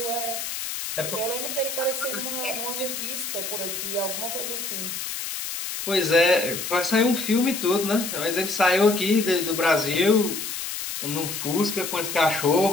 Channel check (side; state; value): left; noise; hiss, 5 dB below the sound